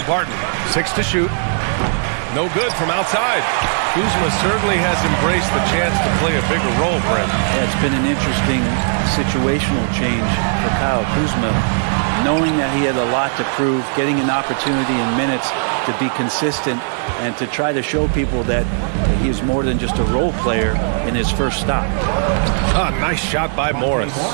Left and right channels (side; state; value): left; silent; digital silence